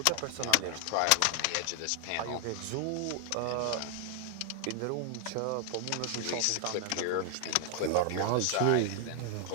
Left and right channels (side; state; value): both; different; correlation 0.00